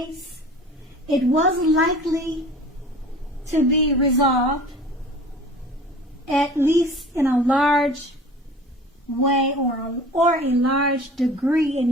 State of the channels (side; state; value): both; normal; correlation 0.43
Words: it was likely to be resolved, at least in a large way or a large degree in